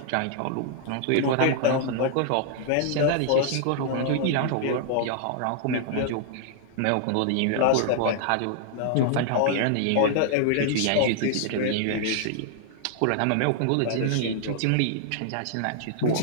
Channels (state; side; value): different; both; correlation -0.01